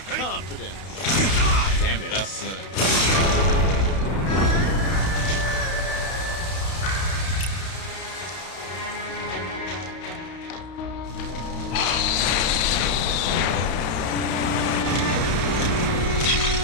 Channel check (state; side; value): late; right; 31 ms